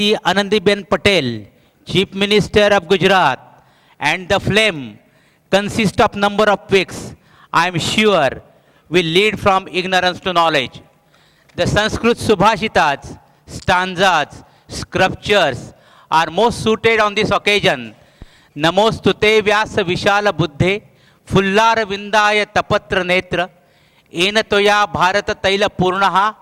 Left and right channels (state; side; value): identical; both; correlation 1.00